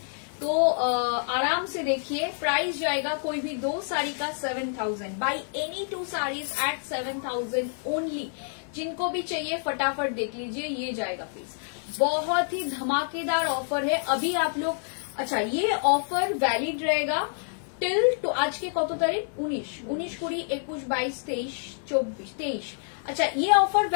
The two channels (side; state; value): right; silent; digital silence